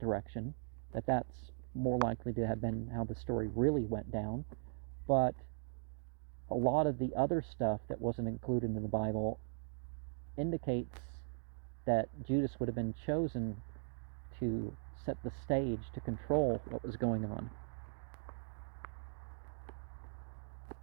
that's more likely to have been how the story really went down. But a lot of the other stuff that wasn't included in the Bible indicates that Judas would have been chosen to set the stage to control what was going on.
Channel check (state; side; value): silent; left; digital silence